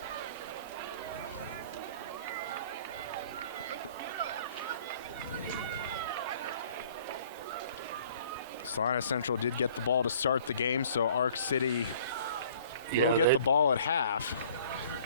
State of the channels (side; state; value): both; inverted; correlation -0.54